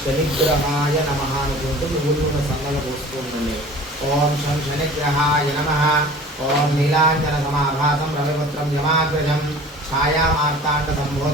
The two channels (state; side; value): normal; both; correlation 0.44